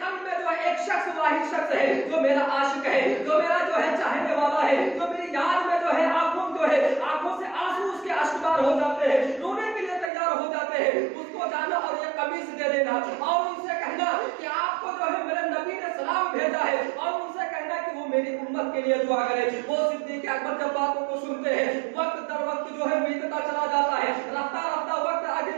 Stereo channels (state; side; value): drops out; left; at 10.1 s